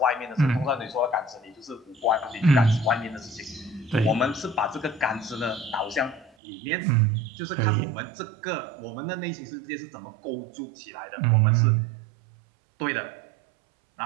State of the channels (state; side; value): drops out; left; at 6.4 s